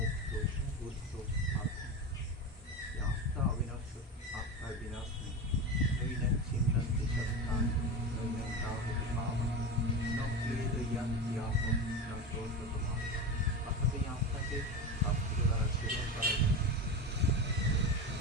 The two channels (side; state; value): both; normal; correlation 0.22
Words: বুদ্ধ আত্মা, আত্মা অবিনাশ্য, আত্মার বিনাশ নেই। নৈনং ছিন্নং দিশস্থান নৈনং তাহতি পাবন ন ক্লেদয়ান্তি আপন ন ক্রোধতমান। অর্থাৎ এই আত্মাকে শাস্ত্র দ্বারা ছেদন করা যায়।